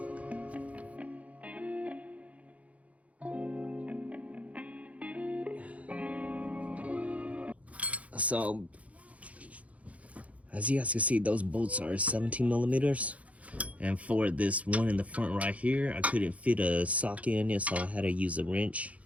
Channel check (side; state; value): left; late; 0.067 ms